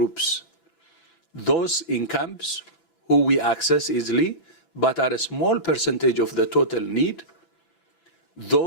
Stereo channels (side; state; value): right; late; 6.0 ms